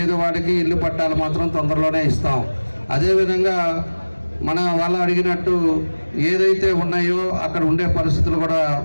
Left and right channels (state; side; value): inverted; both; correlation -1.00